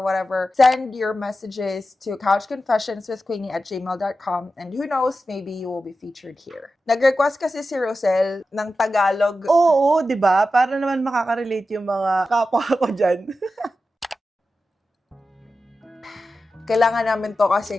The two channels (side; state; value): both; normal; correlation 0.92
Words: whatever, send your messages to couchconfessionswithqueenie@gmail.com, and who knows, maybe you will be featured here. Nag-request kasi si Rosel ng Tagalog. Oo, di ba? Para naman makaka-relate yung mga kapwa ko dyan. Kailangan namin to